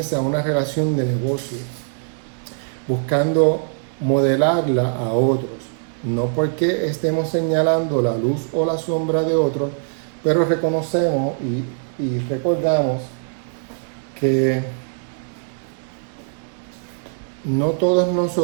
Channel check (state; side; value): silent; left; digital silence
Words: una relación de negocio, buscando modelarla a otros, no porque estemos señalando la luz o la sombra de otros, pero reconocemos y recordamos que no todos